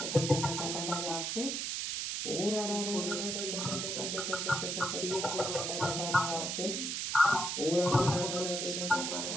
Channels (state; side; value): noise; right; hiss, 2 dB below the sound